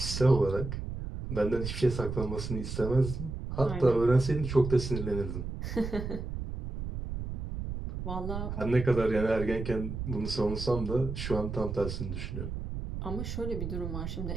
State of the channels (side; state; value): right; noise; rumble, 5 dB below the sound